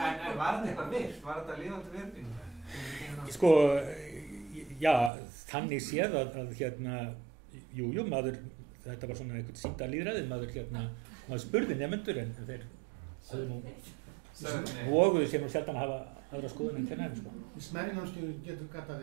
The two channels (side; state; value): left; drops out; at 5.1 s